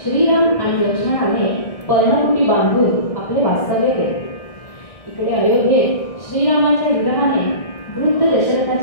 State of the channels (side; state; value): right; late; 1.6 ms